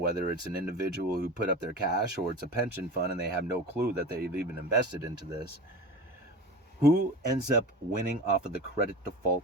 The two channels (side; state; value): both; normal; correlation 0.32